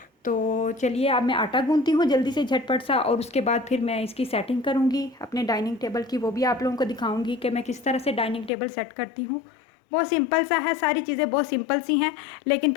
तो चलिए अब मैं आटा गूंथती हूँ जल्दी से झटपट सा, और उसके बाद फिर मैं इसकी सेटिंग करूँगी अपने डाइनिंग टेबल की। वो भी आप लोगों को दिखाऊंगी कि मैं किस तरह से डाइनिंग टेबल सेट करती हूँ। बहुत सिंपल सा है, सारी चीज़ें बहुत सिंपल सी हैं, लेकिन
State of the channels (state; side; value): drops out; right; at 8.5 s